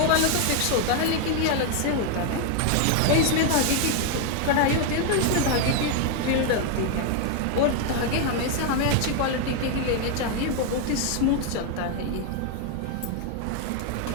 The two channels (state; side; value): different; both; correlation 0.01